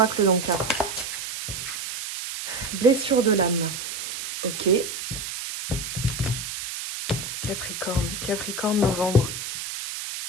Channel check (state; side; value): noise; right; hiss, 6 dB below the sound